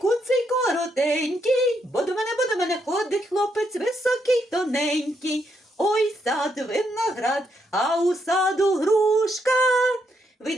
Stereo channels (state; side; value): normal; both; correlation 0.77